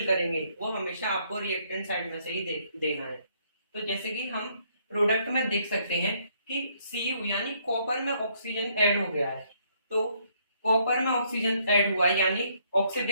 करेंगे वो हमेशा आपको रिएक्टेंट साइड में से ही देना है। तो जैसे कि हम प्रोडक्ट में देख सकते हैं कि Cu यानी कॉपर में ऑक्सीजन ऐड हो गया है, तो कॉपर में ऑक्सीजन ऐड हुआ है यानी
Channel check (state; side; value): inverted; both; correlation -0.69